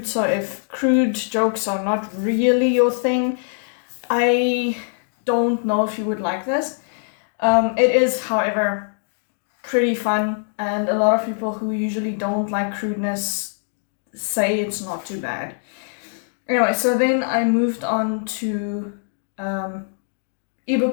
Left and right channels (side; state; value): right; silent; digital silence